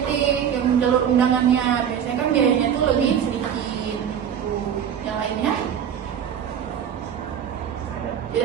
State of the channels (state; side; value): quieter; left; 8.6 dB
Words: yang jalur undangannya. Biasanya kan biayanya tuh lebih sedikit gitu. Yang lainnya